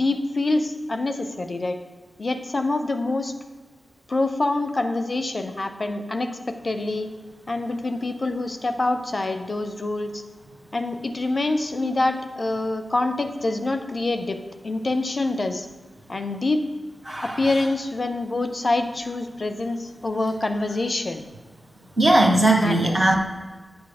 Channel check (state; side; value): normal; both; correlation 0.92